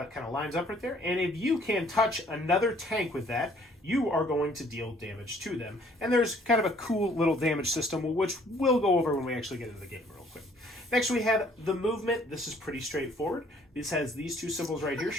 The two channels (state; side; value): normal; both; correlation 0.60